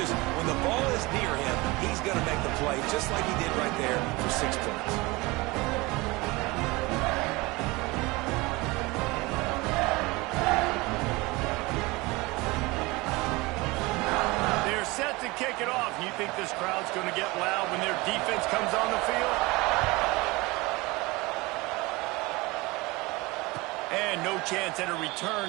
when the ball is near him, he's going to make the play, just like he did right there for 6 points. They're set to kick it off. You think this crowd's going to get loud when their defense comes on the field? And no chance at a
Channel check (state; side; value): quieter; left; 23.2 dB